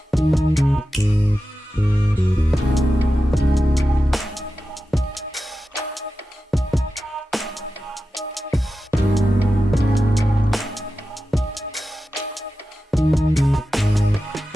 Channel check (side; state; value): both; normal; correlation 0.93